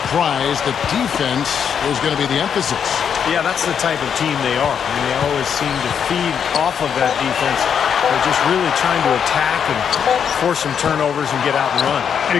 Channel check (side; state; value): right; quieter; 7.6 dB